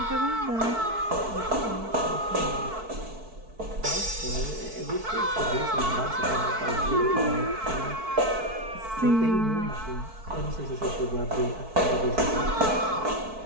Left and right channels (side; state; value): left; late; 4.5 ms